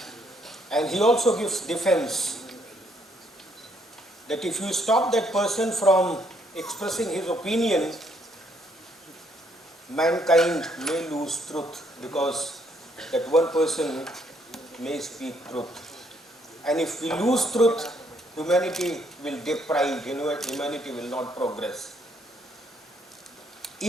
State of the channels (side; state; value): both; normal; correlation 0.70